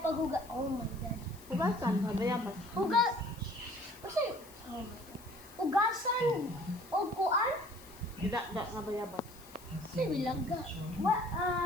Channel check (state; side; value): noise; left; hiss, 21 dB below the sound